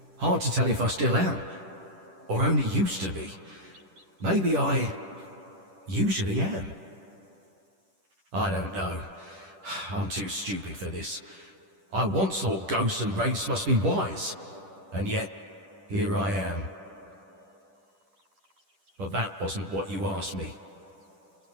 Hard to tell if I still am. Or only used to be. Maybe I usually am. I don't know. I'm too stupid for this. I once thought ghosts and wraiths must be wise. And yet, here I am. But that wasn't what you asked me.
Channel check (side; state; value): left; late; 10 ms